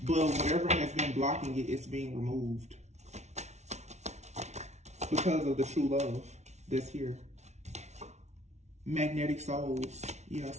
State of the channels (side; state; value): left; late; 0.32 ms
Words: But whatever has been blocking it, it's being removed. Because of the true love that's here. Magnetic souls. Yeah,